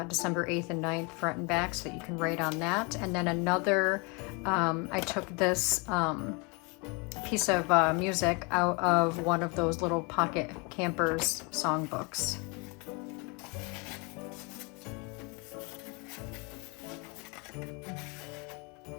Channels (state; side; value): quieter; right; 30.8 dB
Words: December 8th and 9th front and back, so you can write on that. And then another, I took this piece of music out of one of those little pocket campers songbooks.